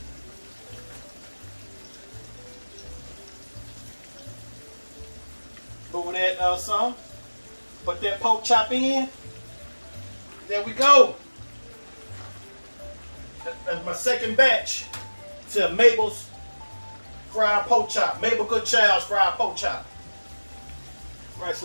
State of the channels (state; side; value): inverted; both; correlation -1.00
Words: Move that some. Put that pork chop in. There we go. That's my second batch to Mabel's fried pork chop. Mabel Goodchild's fried pork chop. Right,